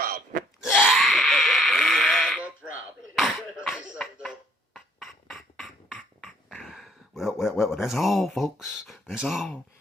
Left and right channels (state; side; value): normal; both; correlation 0.63